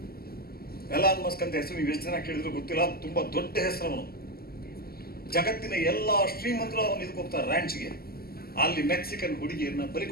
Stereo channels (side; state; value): right; late; 0.45 ms